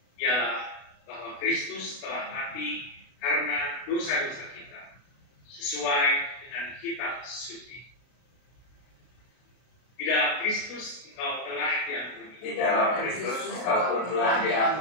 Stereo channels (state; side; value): late; right; 33 ms